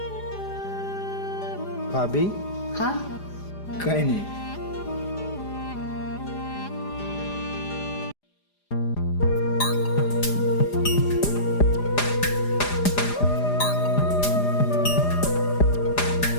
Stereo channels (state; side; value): late; right; 4.9 ms